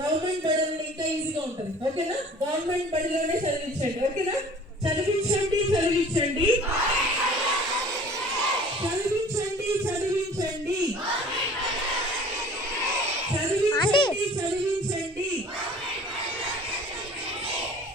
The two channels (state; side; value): normal; both; correlation 0.47